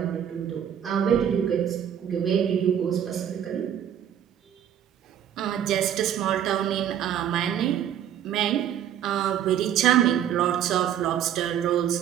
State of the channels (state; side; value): quieter; left; 9.8 dB